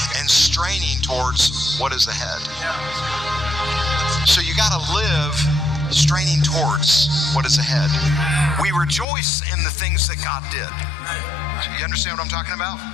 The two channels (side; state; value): right; drops out; at 9.1 s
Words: and straining towards what is ahead. So you got to live straining towards what is ahead. We rejoice in the things that God did. You understand what I'm talking about?